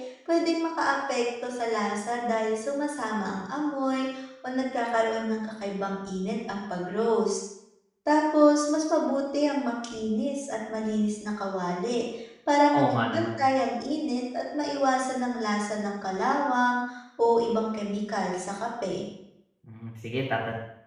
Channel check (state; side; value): identical; both; correlation 1.00